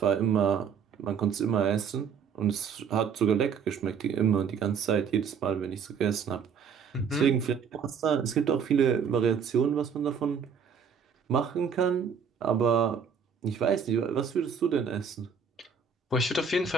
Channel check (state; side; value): quieter; left; 6.6 dB